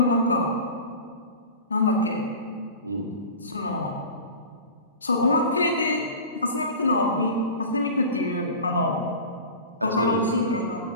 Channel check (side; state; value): both; inverted; correlation -0.34